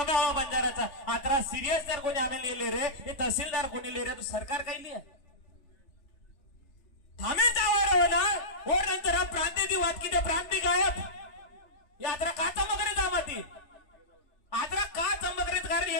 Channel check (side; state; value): right; late; 3.3 ms